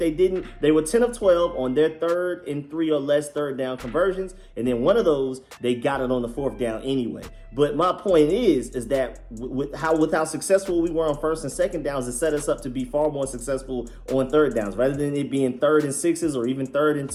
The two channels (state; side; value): identical; both; correlation 1.00